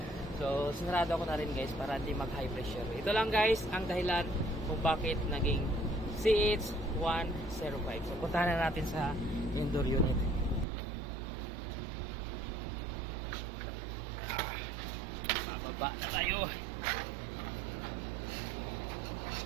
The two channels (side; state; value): left; drops out; at 10.7 s